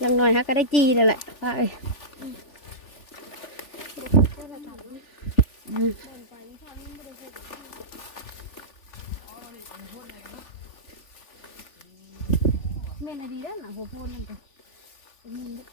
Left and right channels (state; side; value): late; right; 3.4 ms